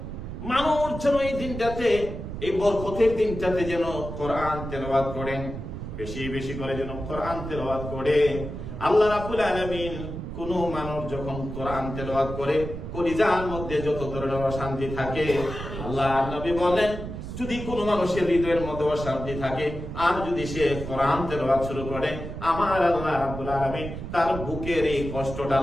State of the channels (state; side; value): noise; right; rumble, 8 dB below the sound